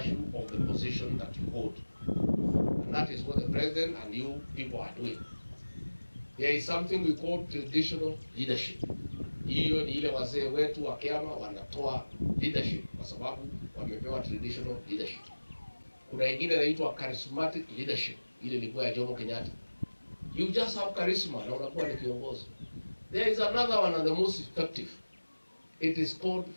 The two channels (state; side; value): inverted; both; correlation -1.00